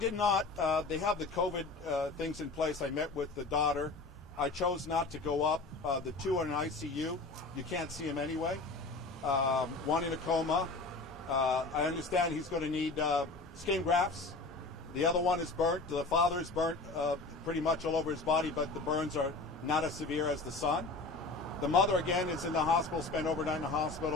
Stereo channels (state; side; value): quieter; right; 3.5 dB